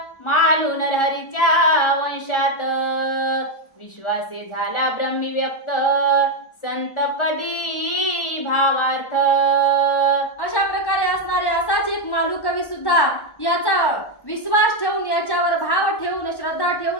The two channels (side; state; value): right; late; 1.1 ms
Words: मालू नरहरीच्या वंशात. विश्वासे झाला ब्रह्मी व्यक्त, संतपदी भावार्थ. अशा प्रकारे असणारे असाच एक मालू कवी सुद्धा याचा विश्वास ठेवून, याच्यावर भाव ठेवून, श्रद्धा